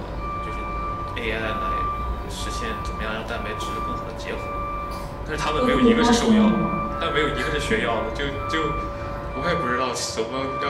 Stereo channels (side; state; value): both; identical; correlation 1.00